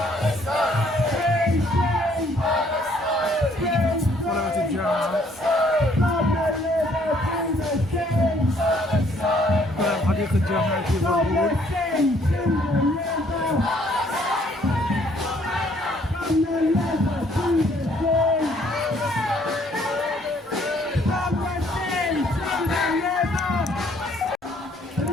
طلبة الجامعة حديقة جامعة ليفربول.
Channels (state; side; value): normal; both; correlation 0.64